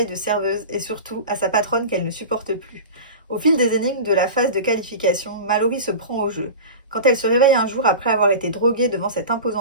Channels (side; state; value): both; inverted; correlation -0.31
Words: de serveuse et surtout à sa patronne qu'elle ne supporte plus. Au fil des énigmes de la phase de qualification, Mallory se prend au jeu. Quand elle se réveille un jour après avoir été droguée devant cet